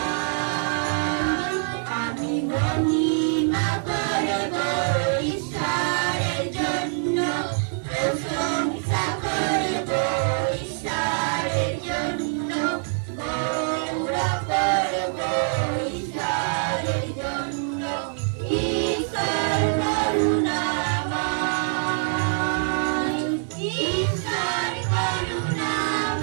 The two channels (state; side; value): silent; left; 59 dB below the other